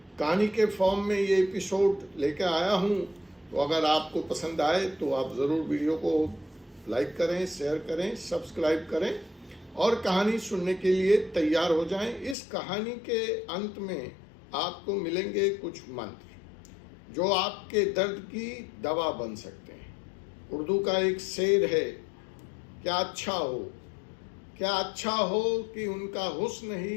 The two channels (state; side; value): drops out; right; at 12.4 s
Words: कहानी के फॉर्म में ये एपिसोड लेकर आया हूँ। तो अगर आपको पसंद आए तो आप ज़रूर वीडियो को लाइक करें, शेयर करें, सब्सक्राइब करें और कहानी सुनने के लिए तैयार हो जाएं। इस कहानी के अंत में आपको मिलेंगे कुछ मंत्र जो आपके दर्द की दवा बन सकते हैं। उर्दू का एक शेर है, क्या अच्छा हो कि उनका हुस्न